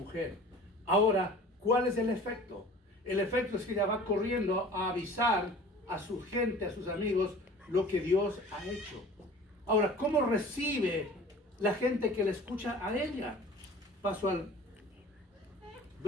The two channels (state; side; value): normal; both; correlation 0.44